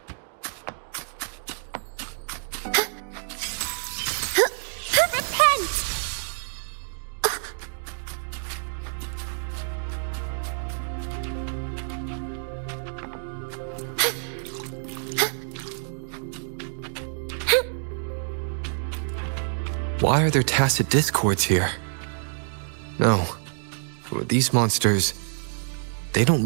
Repent! Why are there tacit discords here? No. These monsters, they don't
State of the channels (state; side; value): silent; left; digital silence